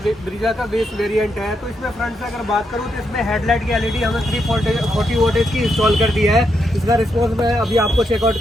ब्रीजा का बेस वेरिएंट है। तो इसमें फ्रंट से अगर बात करूँ तो इसमें हेडलाइट की LED हमें 340 वोल्टेज की इंस्टॉल कर दी है। इसका रिस्पॉन्स मैं अभी आपको चेकआउट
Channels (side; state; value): both; normal; correlation 0.81